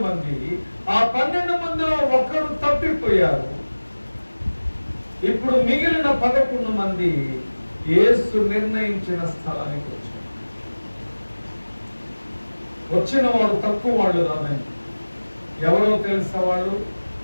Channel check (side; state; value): both; inverted; correlation -1.00